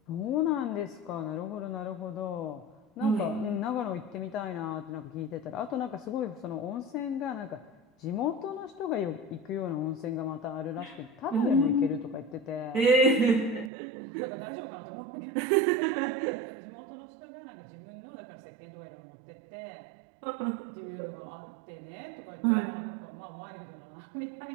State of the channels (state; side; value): drops out; left; at 13.7 s